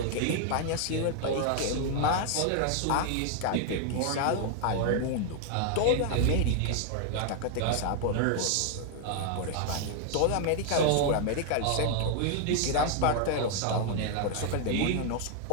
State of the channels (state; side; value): different; both; correlation 0.00